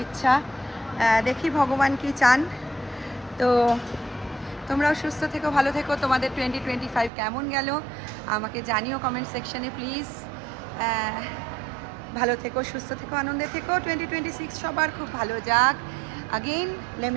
ইচ্ছা। দেখি ভগবান কি চান। তো তোমরাও সুস্থ থেকো, ভালো থেকো। তোমাদের 2025 কেমন গেল আমাকে জানিও কমেন্ট সেকশনে প্লিজ। ভালো থেকো, সুস্থ থেকো, আনন্দে থেকো। 2026 সবার খুব ভালো যাক। Again let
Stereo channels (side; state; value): left; drops out; at 7.1 s